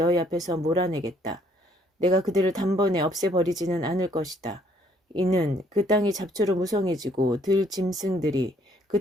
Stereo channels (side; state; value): both; normal; correlation 0.64